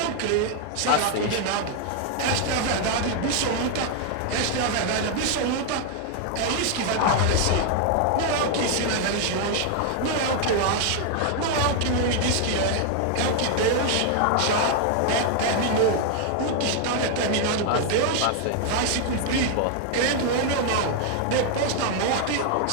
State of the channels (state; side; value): different; both; correlation 0.00